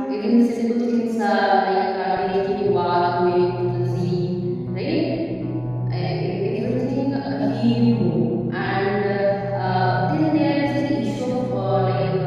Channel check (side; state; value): both; identical; correlation 1.00